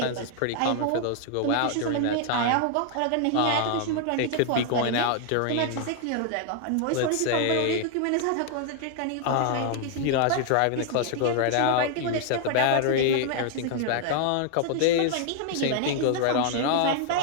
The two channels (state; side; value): different; both; correlation 0.00